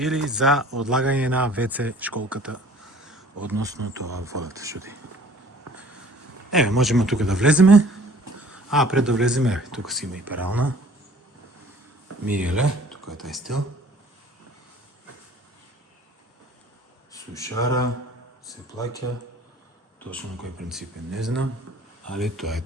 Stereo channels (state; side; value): normal; both; correlation 0.51